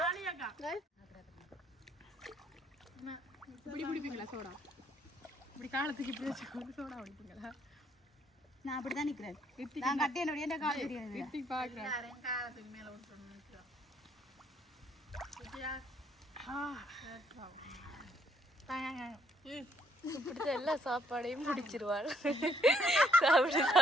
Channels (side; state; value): both; normal; correlation 0.69